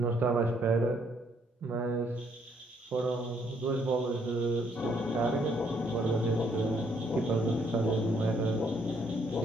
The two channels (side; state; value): both; normal; correlation 0.68